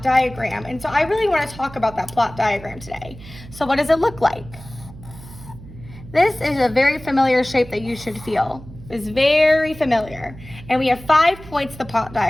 diagram. And so I really want to talk about that plot diagram today. So what does it look like? This is a very familiar shape that you should feel. Is very familiar. And we have 5 points of the plot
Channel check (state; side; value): noise; right; hum, 17 dB below the sound